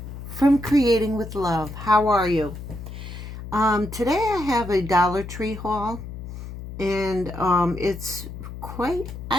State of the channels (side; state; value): left; noise; hum, 10 dB below the sound